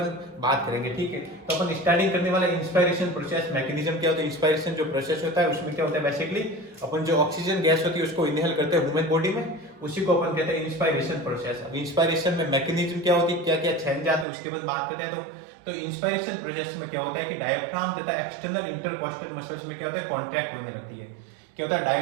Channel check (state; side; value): drops out; left; at 14.2 s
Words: बात करेंगे, ठीक है। तो अपन स्टार्टिंग करने वाला इंस्पिरेशन प्रोसेस मैकेनिज्म क्या होता है, इंस्पिरेशन जो प्रोसेस होता है उसमें क्या होता है, बेसिकली अपन जो ऑक्सीजन गैस होती है उसको इनहेल करते हैं ह्यूमन बॉडी में, उसी को अपन कहते हैं इंस्पिरेशन प्रोसेस। अब इंस्पिरेशन में मैकेनिज्म क्या होती है, क्या क्या चेंज आते हैं उसके बाद बात करते हैं। तो इंस्पिरेशन प्रोसेस में क्या होता है कि डायफ्राम तथा एक्सटर्नल इंटरकोस्टल मसल्स में क्या होता है, कॉन्ट्रैक्ट होने लगती है। क्या होता है,